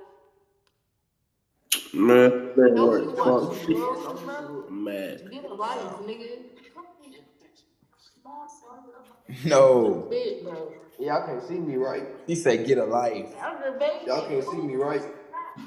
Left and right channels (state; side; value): identical; both; correlation 1.00